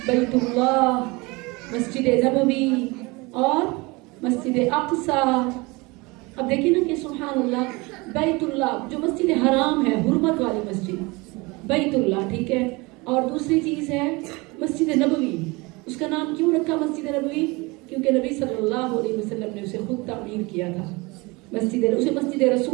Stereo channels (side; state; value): left; quieter; 25.0 dB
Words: بیت اللہ، مسجد نبوی اور مسجد اقصیٰ۔ اب دیکھیں نا کہ سبحان اللہ، بیت اللہ جو مسجد حرام ہے، حرمت والی مسجد، بیت اللہ، ٹھیک ہے؟ اور دوسری چیز ہے مسجد نبوی۔ اس کا نام کیوں رکھا مسجد نبوی؟ کیونکہ نبی صلی اللہ علیہ وسلم نے اسے خود تعمیر کیا تھا۔ اسے مسجد